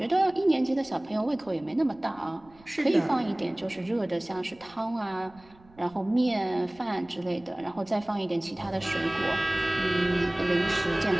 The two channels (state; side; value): noise; right; rumble, 27 dB below the sound